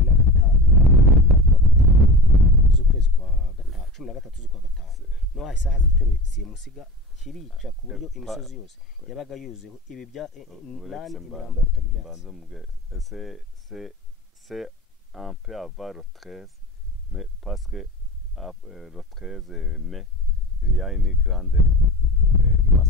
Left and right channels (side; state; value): both; normal; correlation 0.31